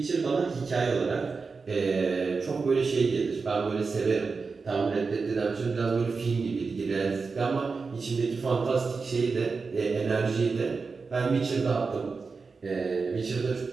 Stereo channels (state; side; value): quieter; left; 4.6 dB